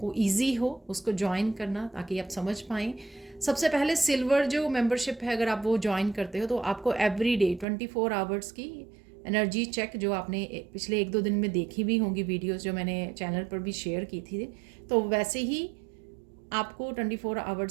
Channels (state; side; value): drops out; left; at 7.7 s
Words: ईजी हो उसको ज्वाइन करना, ताकि आप समझ पाएँ। सबसे पहले सिल्वर जो मेंबरशिप है, अगर आप वो ज्वाइन करते हो तो आपको एवरी डे 24 आवर्स की एनर्जी चेक, जो आपने पिछले 1-2 दिन में देखी भी होंगी वीडियोस जो मैंने चैनल पर भी शेयर की थी, तो वैसे ही आपको 24